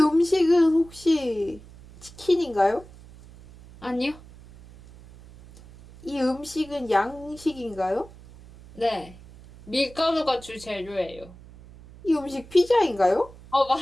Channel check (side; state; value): right; noise; hum, 21 dB below the sound